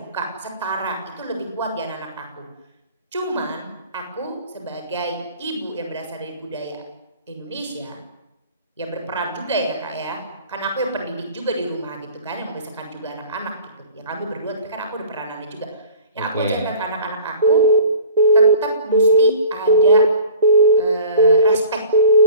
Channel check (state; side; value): inverted; both; correlation -0.46